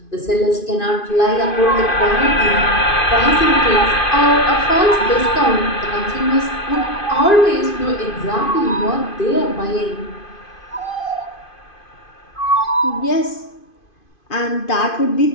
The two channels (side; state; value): right; late; 2.5 ms